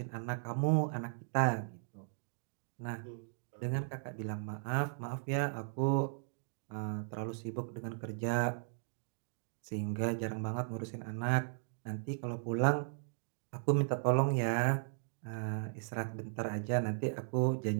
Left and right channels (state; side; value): silent; left; digital silence